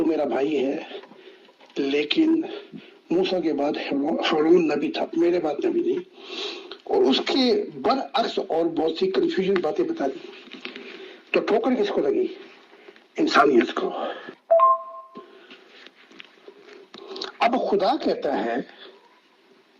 میرا بھائی ہے، لیکن موسیٰ کے بعد ہارون نبی تھا، میرے بعد نبی نہیں. اور اس کے برعکس اور بہت سی کنفیوژن باتیں بتا دی. تو ٹھوکر کس کو لگی؟ انسانیت کو. اب خدا کہتا ہے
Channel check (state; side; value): identical; both; correlation 1.00